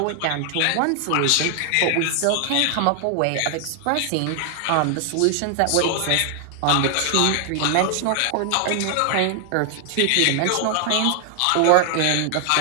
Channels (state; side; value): different; both; correlation 0.00